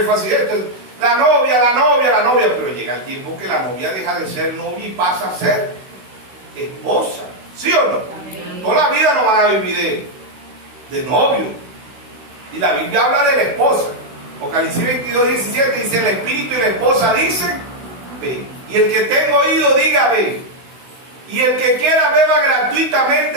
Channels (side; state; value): left; late; 16 ms